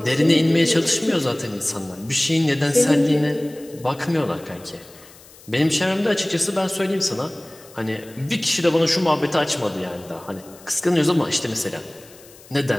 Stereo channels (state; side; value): noise; left; hiss, 23 dB below the sound